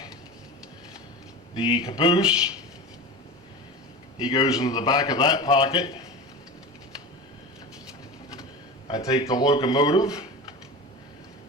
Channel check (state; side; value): normal; both; correlation 0.29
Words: the caboose. He goes into the back of that pocket. I take the locomotive